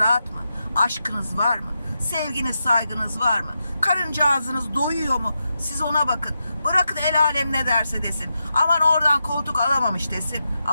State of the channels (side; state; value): both; inverted; correlation -0.87